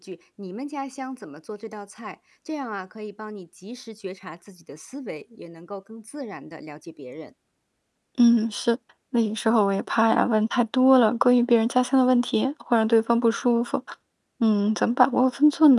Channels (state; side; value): identical; both; correlation 1.00